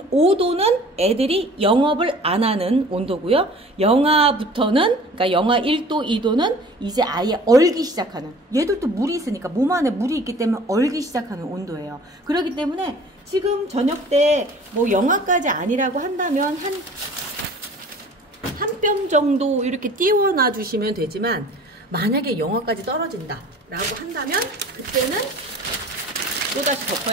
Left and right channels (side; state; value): both; normal; correlation 0.47